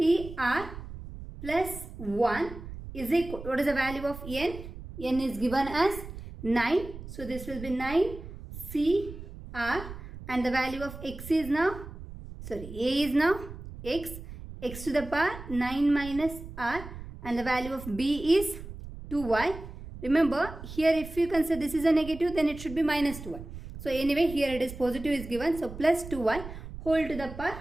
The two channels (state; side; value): noise; right; rumble, 12 dB below the sound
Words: plus 1 is equal, what is the value of n? N is given as 9, so this will be 9 CR, and the value of x is now, sorry, A is now x to the power 9 minus r, and the value of B is 2y. Remember here if you consider this is a negative, then it should be minus 2y. So anyway here it is positive is given, so plus 2y whole to the power